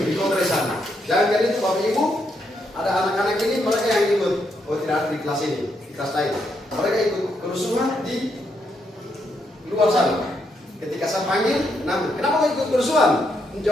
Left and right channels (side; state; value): both; normal; correlation 0.78